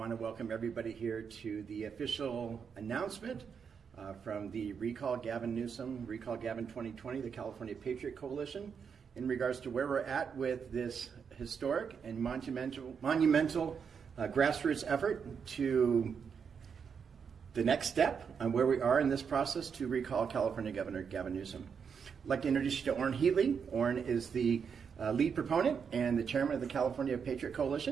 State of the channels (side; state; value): left; quieter; 6.6 dB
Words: to welcome everybody here to the official announcement from the Recall Gavin Newsom, Recall Gavin 2020, the California Patriot Coalition, in regards to where we're at with this historic and monumental grassroots effort to the next step on where we are in this process to recall California Governor Gavin Newsom. I'd like to introduce you to Orrin Heatley. Orrin is the lead proponent and the chairman of the California Patriot